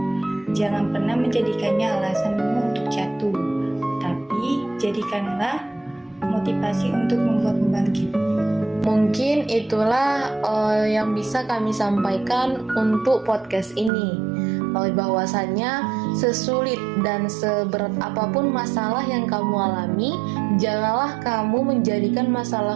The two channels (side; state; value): left; drops out; at 13.9 s